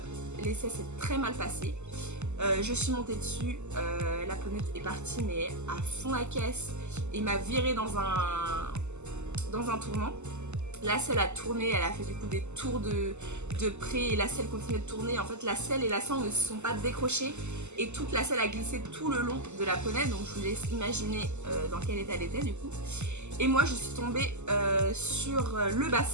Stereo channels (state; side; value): late; left; 0.83 ms